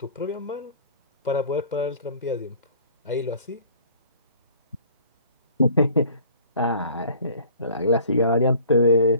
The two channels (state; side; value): inverted; both; correlation -0.50